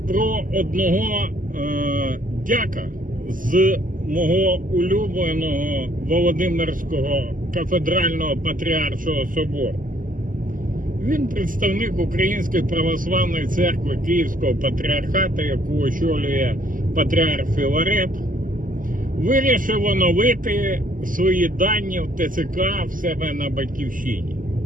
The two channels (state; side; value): late; left; 0.39 ms